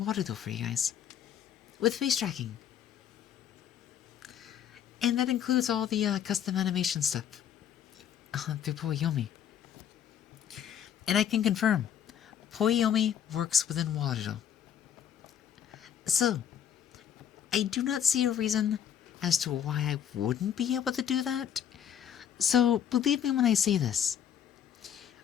Warudo for you guys. With face tracking. And that includes all the custom animation stuff. Through Poyomi. And I can confirm, Poyomi works within Warudo. So, I do not see a reason as to why I wouldn't be able to do that. So, believe me when I say this.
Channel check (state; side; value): quieter; right; 9.1 dB